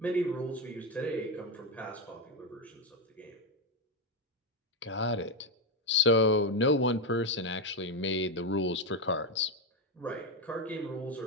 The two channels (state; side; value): normal; both; correlation 0.08